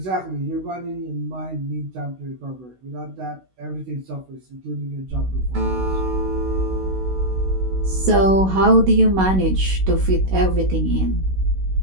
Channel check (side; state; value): left; late; 16 ms